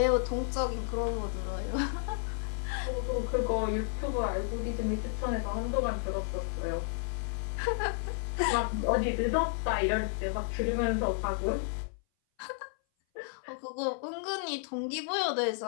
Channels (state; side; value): silent; right; 56 dB below the other